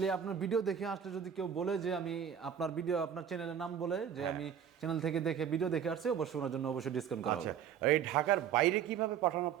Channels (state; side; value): quieter; left; 8.5 dB